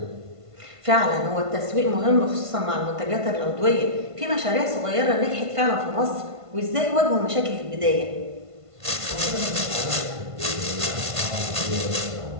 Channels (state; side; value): late; left; 1.5 ms